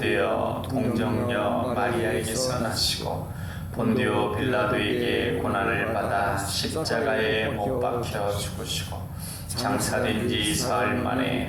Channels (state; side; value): identical; both; correlation 1.00